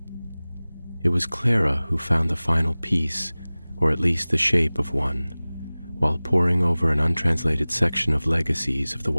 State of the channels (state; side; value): inverted; both; correlation -0.99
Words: It was Clara who found the final piece, or at least the shape of one, while poring over an untranslated section of Legacies of the